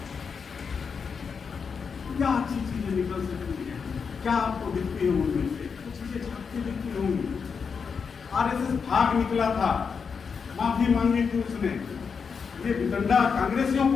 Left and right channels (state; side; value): quieter; right; 5.9 dB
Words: क्या अच्छी चीजें निकल सकती है, क्या आपको दिखती है उनमें से? कुछ चीजें झांकती दिखती होंगी। आरएसएस भाग निकला था, माफी मांगी थी उसने। ये वितंडा कांग्रेसियों